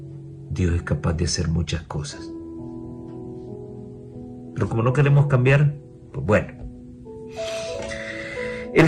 Dios es capaz de hacer muchas cosas. Pero como no queremos cambiar, pues bueno.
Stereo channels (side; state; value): both; identical; correlation 1.00